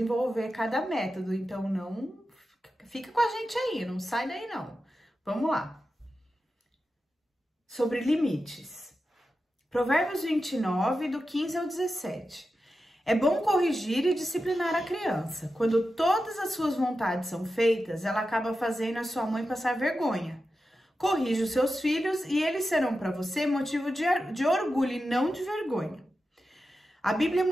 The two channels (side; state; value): both; normal; correlation 0.91